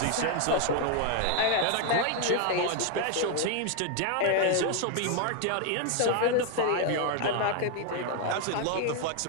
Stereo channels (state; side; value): different; both; correlation 0.00